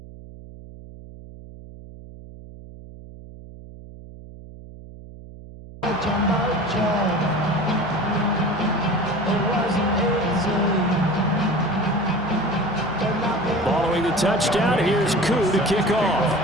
Following the touchdown, here's Koo to kick off.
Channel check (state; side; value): noise; right; hum, 17 dB below the sound